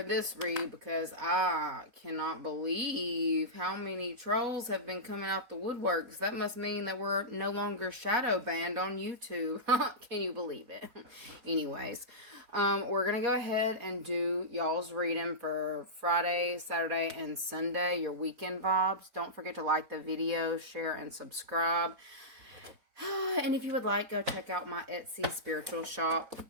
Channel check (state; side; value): late; left; 4.2 ms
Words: this read because I cannot believe how many trolls have been coming out the woodworks. That must mean that we're no longer shadow banned on YouTube. Can you believe it? Anyways, we're going to go ahead and do y'all's reading for Friday, Saturday, and Sunday, your weekend vibes. Don't forget to like the video, share, and subscribe. And if you would like, go check out my Etsy spiritual shop.